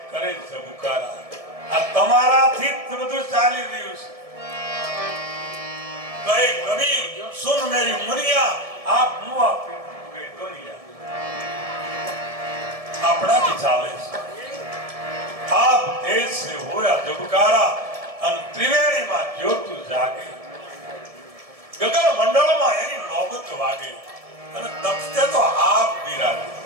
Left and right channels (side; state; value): left; late; 1.7 ms